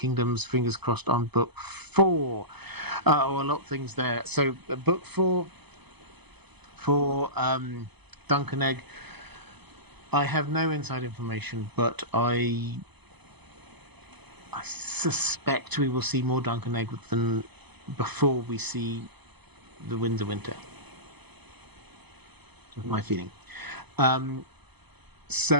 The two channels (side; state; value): left; late; 0.99 ms